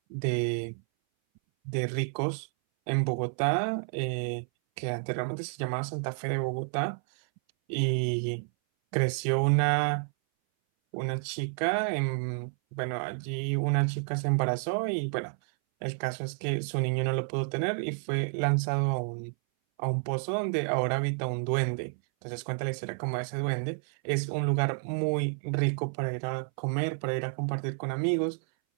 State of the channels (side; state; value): left; silent; 58 dB below the other